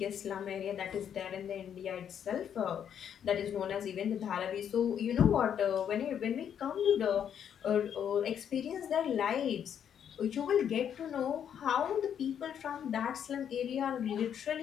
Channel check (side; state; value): right; quieter; 8.8 dB